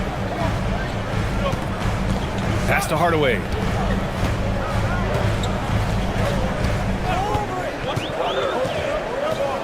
Pass to Hardaway.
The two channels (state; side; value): identical; both; correlation 1.00